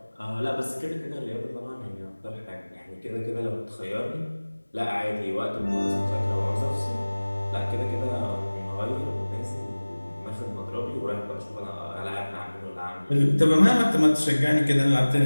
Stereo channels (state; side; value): inverted; both; correlation -1.00